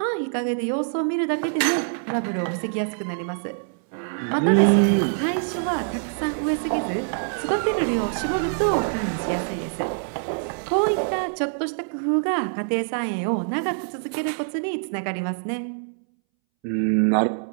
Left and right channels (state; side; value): silent; left; 62 dB below the other